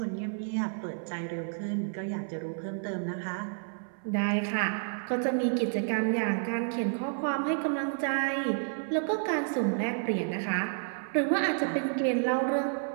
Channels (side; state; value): left; silent; 58 dB below the other